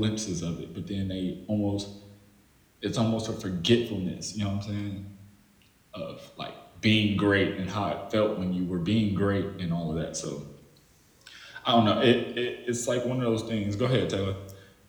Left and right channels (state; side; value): identical; both; correlation 1.00